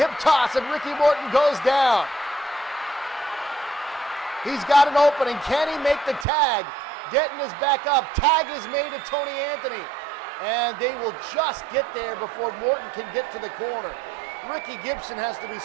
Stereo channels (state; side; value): drops out; left; at 6.2 s